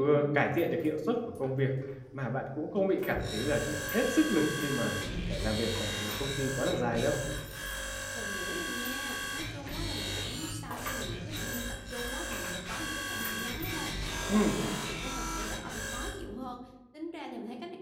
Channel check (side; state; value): both; identical; correlation 1.00